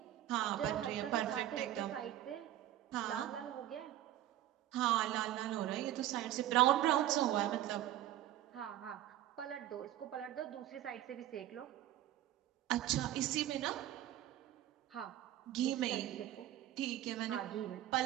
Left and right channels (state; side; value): quieter; left; 13.1 dB